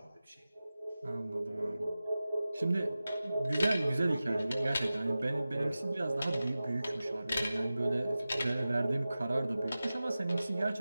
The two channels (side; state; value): both; inverted; correlation -0.96